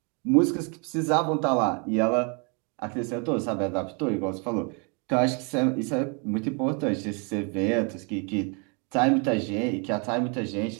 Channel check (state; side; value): quieter; left; 34.9 dB